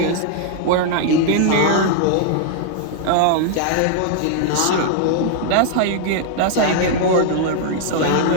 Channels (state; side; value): different; both; correlation -0.01